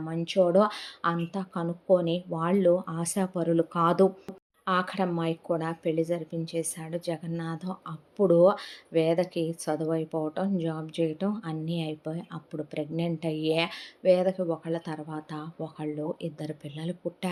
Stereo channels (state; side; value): identical; both; correlation 1.00